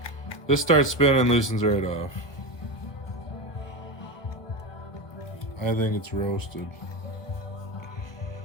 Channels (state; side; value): late; right; 1.2 ms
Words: This starts spinning, loosens right off. I think it's roasted.